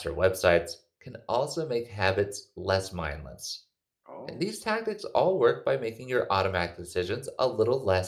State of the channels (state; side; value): identical; both; correlation 1.00